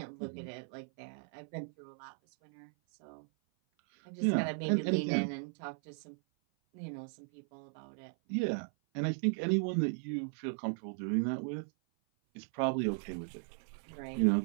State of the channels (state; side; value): silent; left; 53 dB below the other